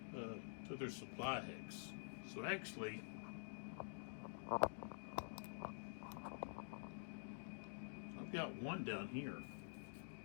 to their supply hex. So actually, I've got one down here.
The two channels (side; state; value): right; silent; digital silence